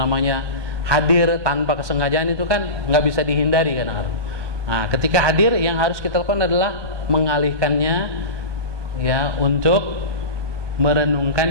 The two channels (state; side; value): late; left; 1.2 ms